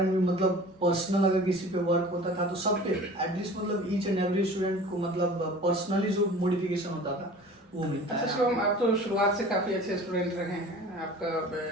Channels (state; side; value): normal; both; correlation 0.42